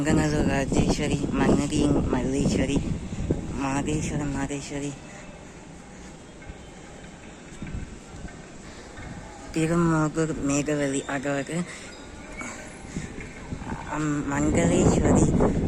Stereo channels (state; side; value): identical; both; correlation 1.00